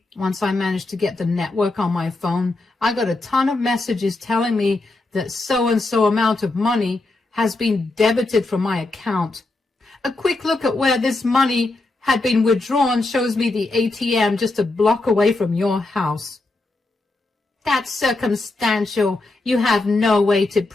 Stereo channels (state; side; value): quieter; right; 3.1 dB